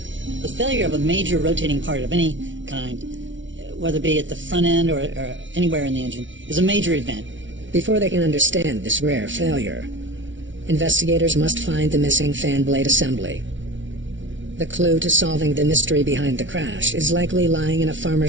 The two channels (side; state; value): left; late; 0.56 ms